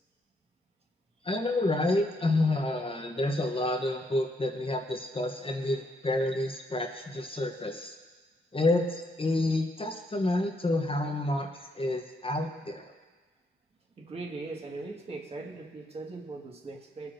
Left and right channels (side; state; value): both; normal; correlation 0.74